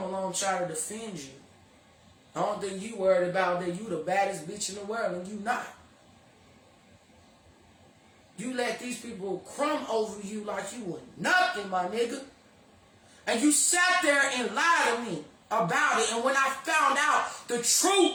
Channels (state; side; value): identical; both; correlation 1.00